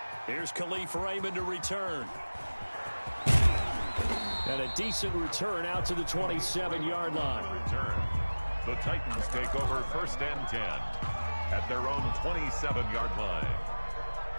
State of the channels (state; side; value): inverted; both; correlation -1.00